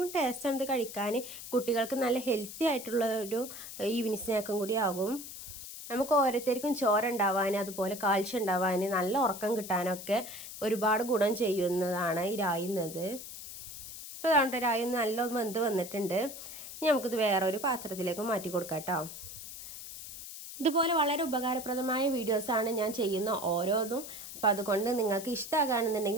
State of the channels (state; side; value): noise; left; hiss, 11 dB below the sound